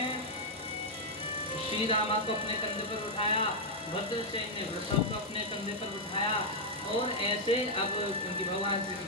श्री रामा को अपने कंधे पर उठाया, भद्रसेन ने वृषभ को अपने कंधे पर उठाया और ऐसे अब उनकी भगवान श्री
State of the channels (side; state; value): both; normal; correlation -0.03